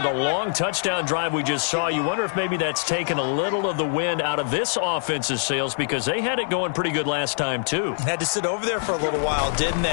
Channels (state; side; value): silent; right; digital silence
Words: the long touchdown drive we just saw, you wonder if maybe that's taken a little of the wind out of this offense's sails because they had it going pretty good last time too. Had to sit over there for a little while, didn't